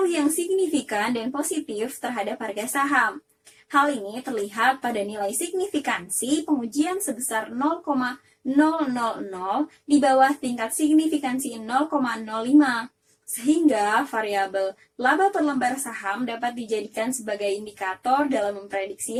yang signifikan dan positif terhadap harga saham. Hal ini terlihat pada nilai signifikansi pengujian sebesar 0,000 di bawah tingkat signifikansi 0,05. Sehingga variabel laba per lembar saham dapat dijadikan sebagai indikator dalam memprediksi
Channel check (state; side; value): identical; both; correlation 1.00